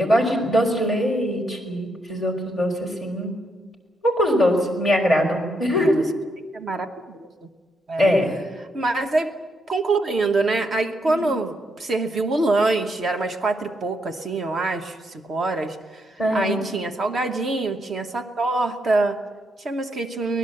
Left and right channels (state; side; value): normal; both; correlation 0.78